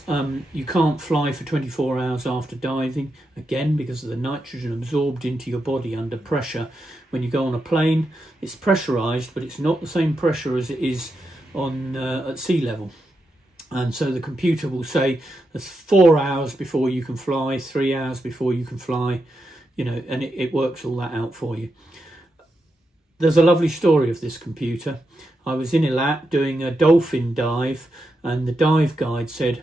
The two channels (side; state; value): both; normal; correlation 0.86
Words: you can't fly for 24 hours after diving, again because of the nitrogen absorbed into your body under pressure. When you go on a plane, it's pressurized, but it's not the same pressure as it is on at sea level. And so the computer will say there's 4 hours before you can fly, 3 hours before you can fly, and it works all that out for you. There's a lovely story of this computer. I was in Eilat doing a dolphin dive, and the dive guide said,